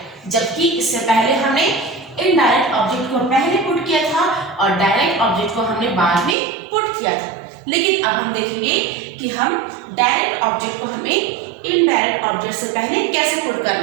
जबकि इससे पहले हमने इनडायरेक्ट ऑब्जेक्ट को पहले पुट किया था और डायरेक्ट ऑब्जेक्ट को हमने बाद में पुट किया था। लेकिन अब हम देखेंगे कि हम डायरेक्ट ऑब्जेक्ट को हमें इनडायरेक्ट ऑब्जेक्ट से पहले कैसे पुट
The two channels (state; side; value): drops out; left; at 6.4 s